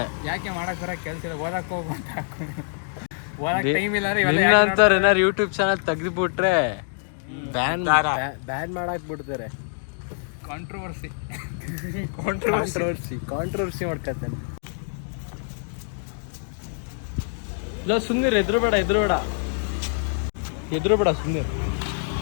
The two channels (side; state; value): right; silent; digital silence